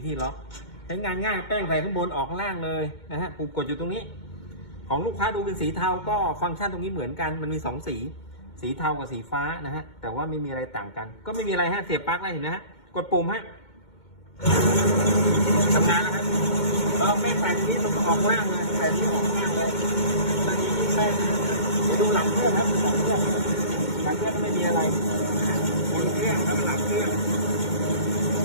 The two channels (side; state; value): right; late; 2.2 ms